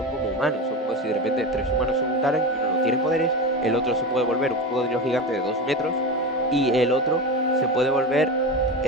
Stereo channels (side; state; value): both; normal; correlation 0.22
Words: como humanos, son como si de repente 3 humanos se juntaran y uno no tiene poderes, el otro se puede volver un cocodrilo gigante de 2 metros y el otro se puede volver,